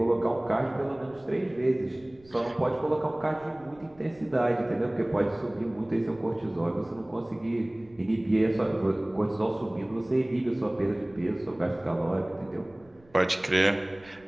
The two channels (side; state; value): right; noise; rumble, 28 dB below the sound